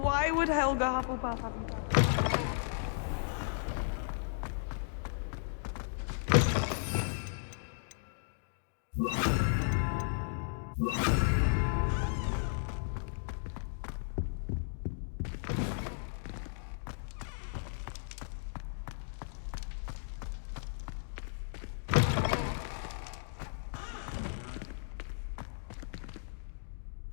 Why would Helga Hufflepuff have you?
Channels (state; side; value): silent; right; digital silence